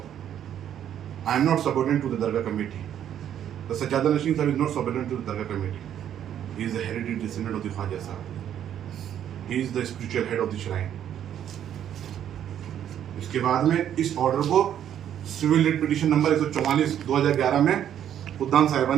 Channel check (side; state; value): left; quieter; 10.1 dB